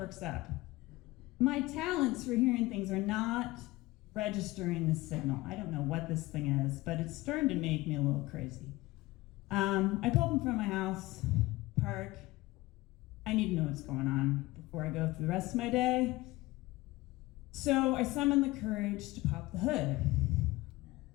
up. My talents for hearing things are not registering the signal. I don't know what this thing is, but it's starting to make me a little crazy. I pull up in front of my house, park. I need to know what's going on before I go through the rest of my day. So I summon the courage to pop the hood.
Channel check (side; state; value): right; quieter; 19.7 dB